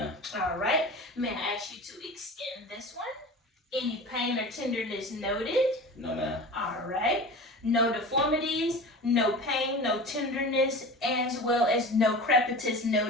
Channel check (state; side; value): normal; both; correlation 0.34